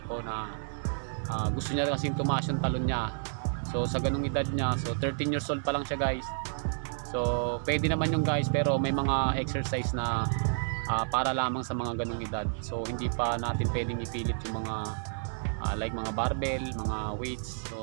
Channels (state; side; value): silent; left; digital silence